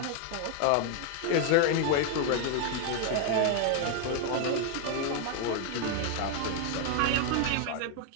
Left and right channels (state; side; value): different; both; correlation 0.00